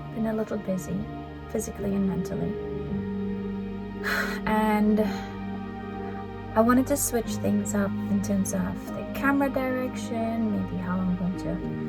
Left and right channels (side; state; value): both; identical; correlation 1.00